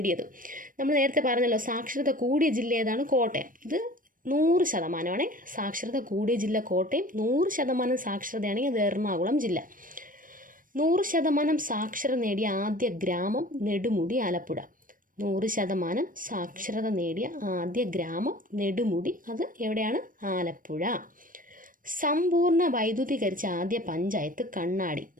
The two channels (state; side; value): late; left; 0.40 ms